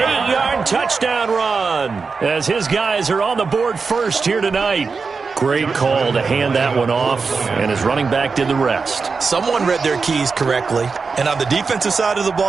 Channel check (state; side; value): quieter; left; 4.8 dB